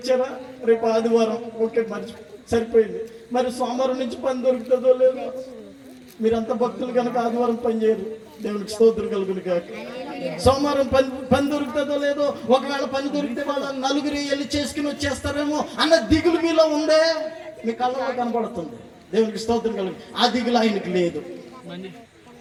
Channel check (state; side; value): identical; both; correlation 1.00